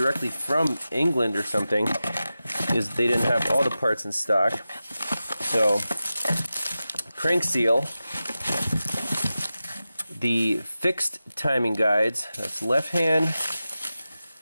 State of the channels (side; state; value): both; inverted; correlation -0.94